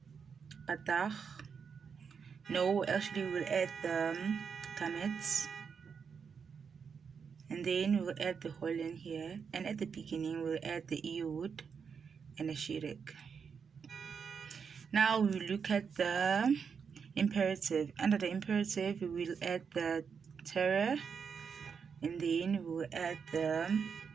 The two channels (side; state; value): left; quieter; 6.3 dB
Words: patach. No, actually we will add the kamets, and then we will add the Holland here, and at the beginning we'll add the Iod and the shirek. Now we will look at the imperative. Under the imperative, we will add the terror, and then we will add the